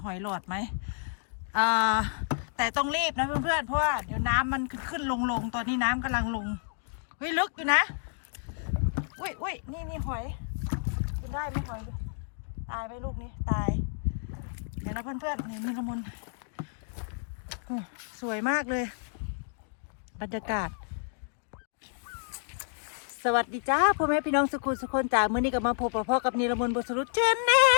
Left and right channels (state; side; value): silent; right; digital silence